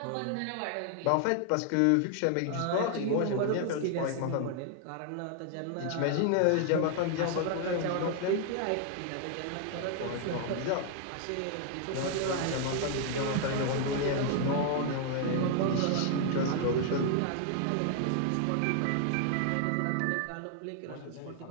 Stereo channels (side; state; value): both; different; correlation 0.00